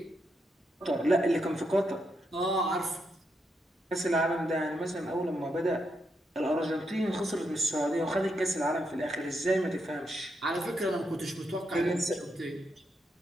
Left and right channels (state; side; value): normal; both; correlation 0.81